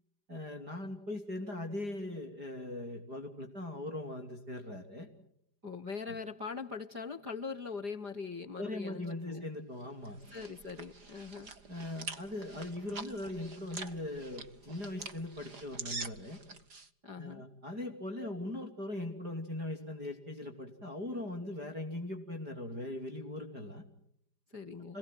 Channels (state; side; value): late; left; 4.9 ms